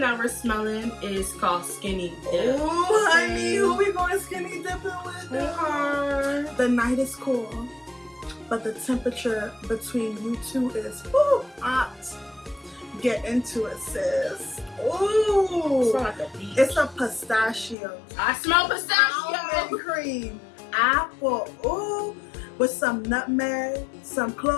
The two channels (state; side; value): drops out; right; at 17.8 s